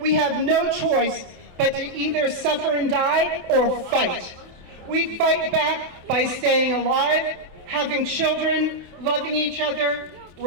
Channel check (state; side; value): late; left; 28 ms